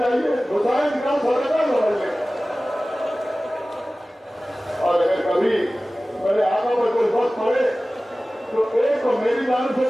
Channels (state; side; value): normal; both; correlation 0.97